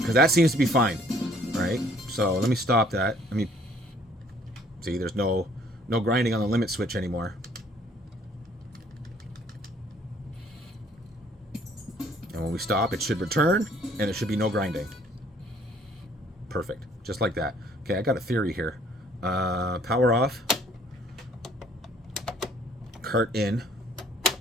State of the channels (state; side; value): normal; both; correlation 0.60